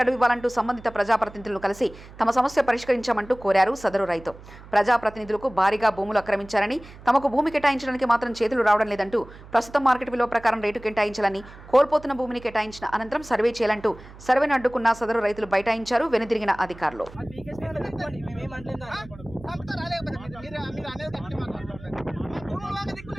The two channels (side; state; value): right; noise; hum, 18 dB below the sound